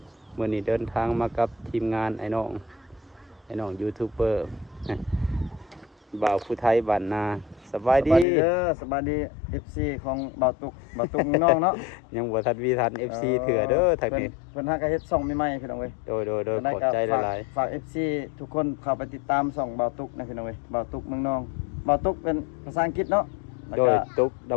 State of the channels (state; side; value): drops out; right; at 8.2 s